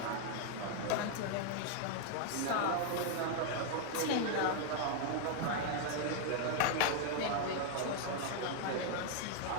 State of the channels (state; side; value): different; both; correlation 0.00